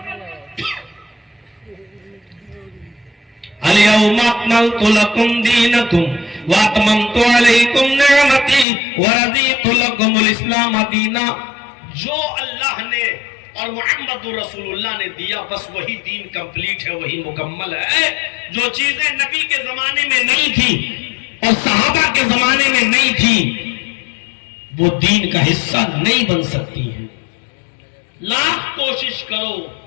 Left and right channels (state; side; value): drops out; right; at 8.7 s